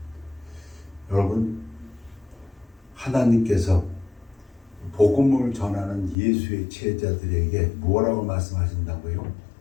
여러분, 하나님께서 복음을 전하는 예수의 제자들에게 뭐라고 말씀하신다고요?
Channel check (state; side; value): drops out; right; at 6.2 s